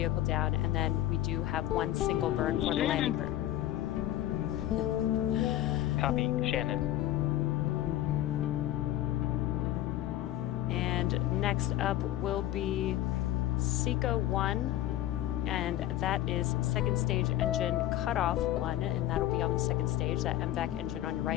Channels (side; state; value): right; quieter; 13.7 dB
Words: down. And then we do have 1 single burn for the landing burn. Copy, Shannon. And next up will be Seco 1. And that is second stage engine cutoff 1, and that'll be on the second stage. That MVAC engine on your